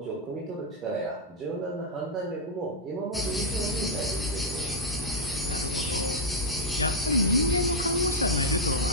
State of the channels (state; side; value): normal; both; correlation -0.03